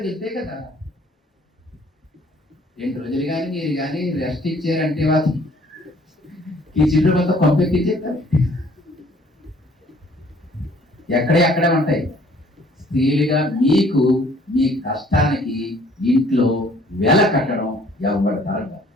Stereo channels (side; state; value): both; normal; correlation 0.58